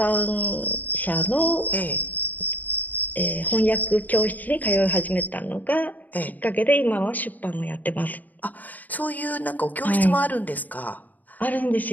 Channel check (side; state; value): right; late; 0.081 ms